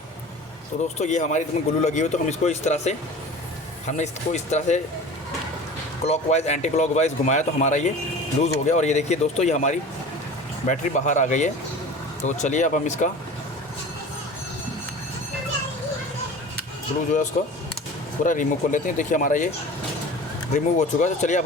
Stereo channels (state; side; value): normal; both; correlation 0.38